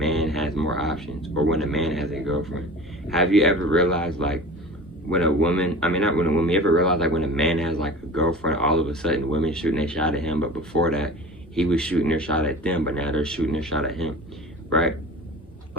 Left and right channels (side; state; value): both; normal; correlation 0.38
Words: has more options, or when a man has a girlfriend. Have you ever realized, like, when a woman, you ever realize, like, when a man has, like, a girlfriend, all of a sudden women shooting their shot at him, but before that, he was shooting their shot at them, but now they're shooting their shot at him, right? A